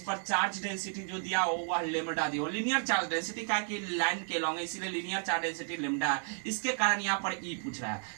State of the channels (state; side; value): silent; left; 56 dB below the other